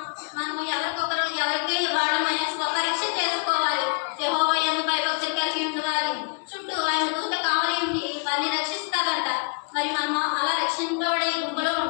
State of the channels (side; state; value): right; quieter; 35.6 dB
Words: మనం ఎవరికి వాళ్ళని స్వపరీక్ష చేసుకోవాలి. యెహోవా యందు భయభక్తులు కలిగి ఉండేవారి చుట్టూ ఆయన దూత కావలి ఉండి వారిని రక్షిస్తాడంట. మరి మనం అలా రక్షింపబడే గుంపులో